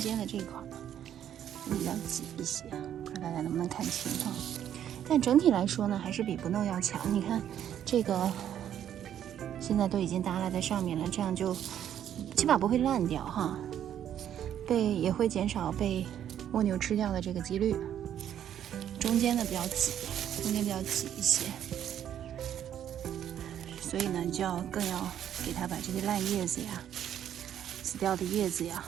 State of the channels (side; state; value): left; quieter; 10.2 dB